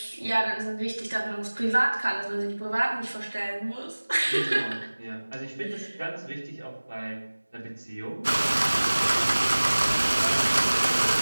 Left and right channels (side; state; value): both; inverted; correlation -1.00